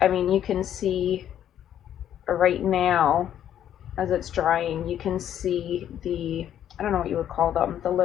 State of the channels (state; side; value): quieter; right; 10.6 dB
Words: I mean, you can see right now as it's drying, you can see the, I don't know what you would call them, the